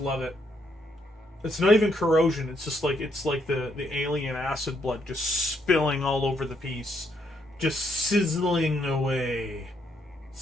it. It's not even corrosion. It's just like the alien acid blood just spilling all over the piece, just sizzling away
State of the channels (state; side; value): normal; both; correlation 0.74